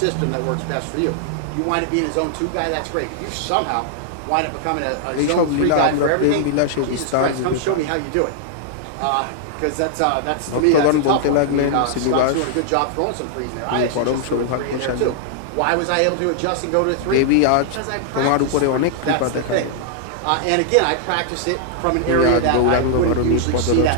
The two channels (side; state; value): both; different; correlation -0.01